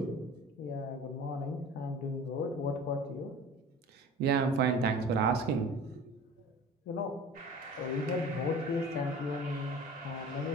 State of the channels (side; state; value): both; normal; correlation 0.41